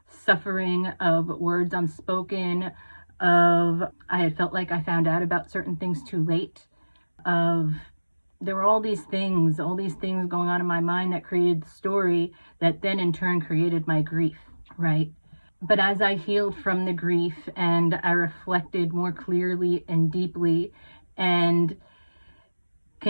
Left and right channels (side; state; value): both; inverted; correlation -1.00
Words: suffering, of words unspoken, of I had felt like I found out about certain things too late, there were all these things going on in my mind that created the story that then in turn created my grief, right? But as I healed from the grief and I reflected more clearly and deeply and